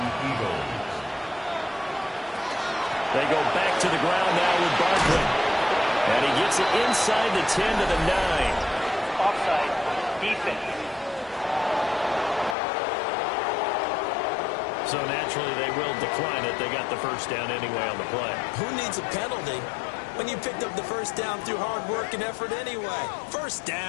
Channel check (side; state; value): right; drops out; at 12.6 s